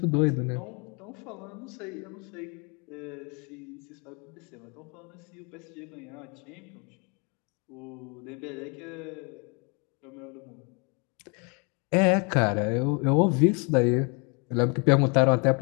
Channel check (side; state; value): right; quieter; 33.4 dB